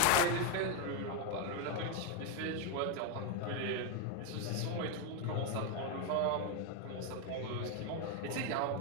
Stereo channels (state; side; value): different; both; correlation 0.01